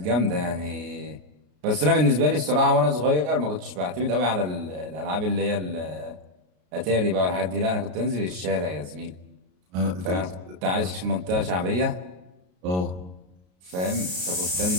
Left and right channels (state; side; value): late; left; 33 ms